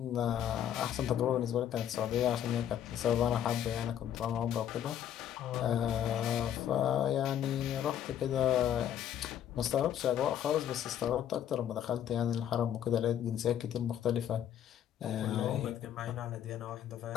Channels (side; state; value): right; quieter; 10.1 dB